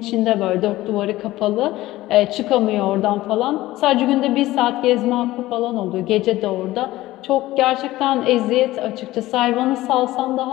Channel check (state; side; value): quieter; right; 16.9 dB